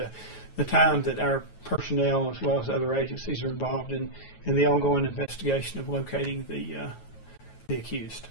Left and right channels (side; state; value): right; late; 9.3 ms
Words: the time that our personnel, as well as other agencies, are involved in the ongoing investigation of locating the accused.